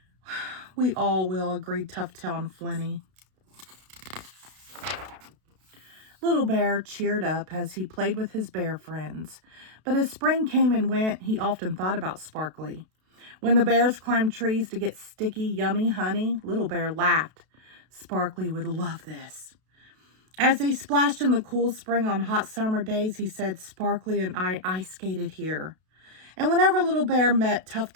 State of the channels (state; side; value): late; left; 32 ms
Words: We all will, agreed Tough-Tail and Flinty. Little Bear cheered up as he played with his bear friends. But as spring came and went, he often thought about Sparkly. When the bears climbed trees to get sticky, yummy honey, Little Bear laughed. Sparkly would love this. As they splashed in the cool spring on hot summer days, he said, Sparkly and I ice skated here. And whenever Little Bear met